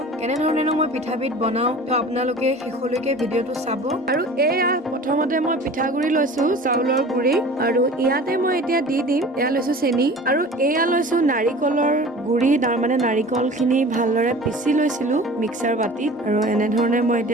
কেনেধৰণেনো মই পিঠাবিধ বনাওঁ, তো আপোনালোকে শেষলৈকে ভিডিঅ'টো চাব। আৰু এয়া প্ৰথমতে মই পিঠাগুৰি লৈছো, চাউলৰ গুৰি, আৰু ইয়াতে মই এতিয়া দি দিম, এয়া লৈছো চেনি, আৰু এয়া লৈছো নাৰিকলৰ গুৰি, তাৰমানে নাৰিকলখিনি ভালদৰে পিচি লৈছিলো মিক্সাৰ বাতিত, আৰু এনেধৰণে মই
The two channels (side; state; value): both; normal; correlation 0.41